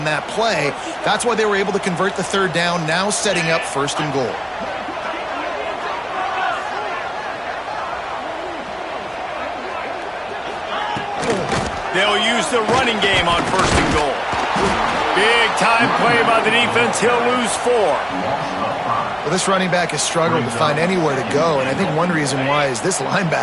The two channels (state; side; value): identical; both; correlation 1.00